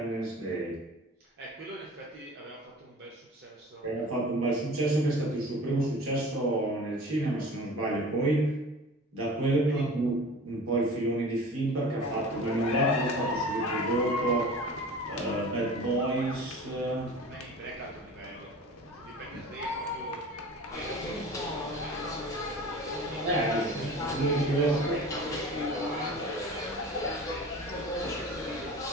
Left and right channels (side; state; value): both; normal; correlation 0.39